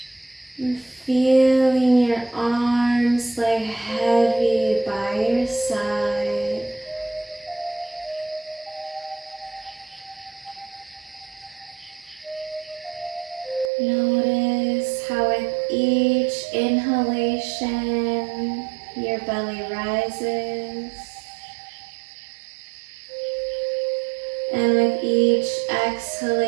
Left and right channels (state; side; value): drops out; left; at 13.7 s